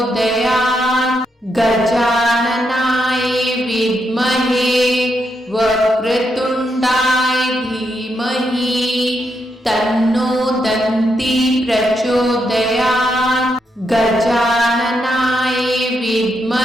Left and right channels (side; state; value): both; normal; correlation 0.81